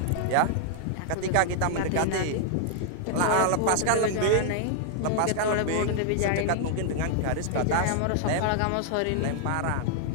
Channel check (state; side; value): different; both; correlation 0.00